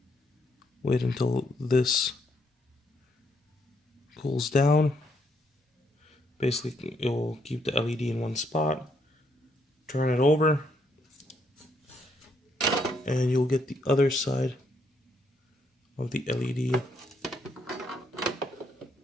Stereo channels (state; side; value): normal; both; correlation 0.73